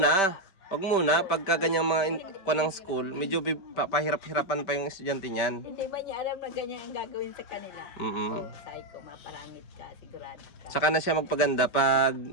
Pagka ganyang mga ng school, medyo pahirap-hirapan pa yung estudyante niyan. Hindi ba niya alam na ganyan ang gagawin sa kanila? So, sabi ko, maparangit ka, sigurado ka. Saka na siya magpaganda pag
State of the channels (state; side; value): late; right; 5.2 ms